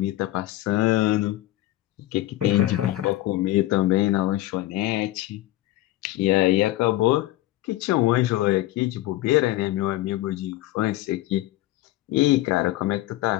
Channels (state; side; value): quieter; right; 16.1 dB